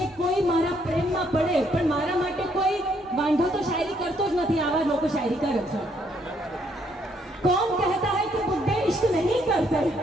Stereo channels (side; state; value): both; normal; correlation 0.70